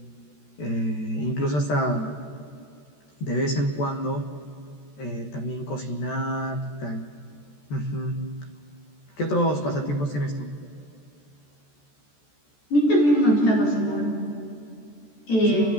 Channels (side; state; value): right; late; 14 ms